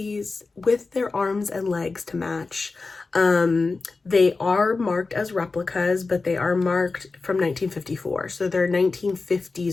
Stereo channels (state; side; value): quieter; right; 3.9 dB